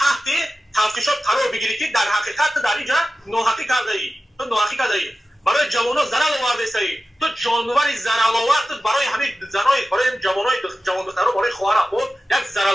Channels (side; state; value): both; normal; correlation 0.94